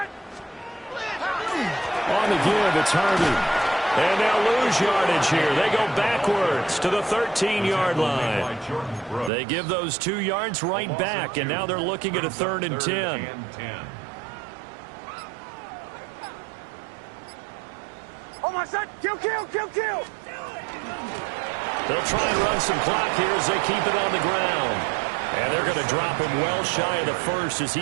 the give, it's Harvey. And they'll lose yardage here. They go backwards to the 13-yard line. They give those 2 yards right back, and now they're looking at a 3rd and 10. Kill. They'll try and run some clock here as they keep it on the ground. And they're going to drop him well shy of the 1st as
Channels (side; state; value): left; drops out; at 9.3 s